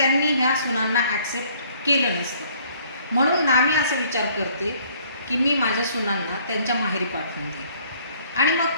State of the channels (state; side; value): inverted; both; correlation -0.60